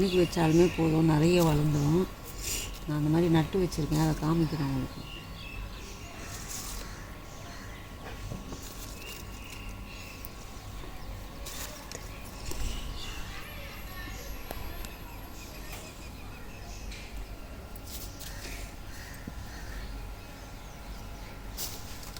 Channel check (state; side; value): identical; both; correlation 1.00